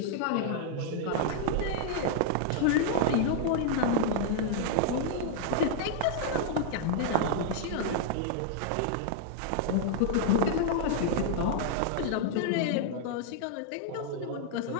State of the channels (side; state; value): both; different; correlation -0.01